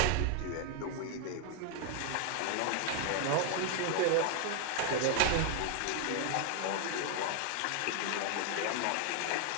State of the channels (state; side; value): different; both; correlation 0.00